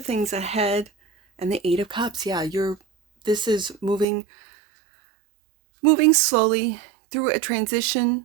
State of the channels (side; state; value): left; drops out; at 4.0 s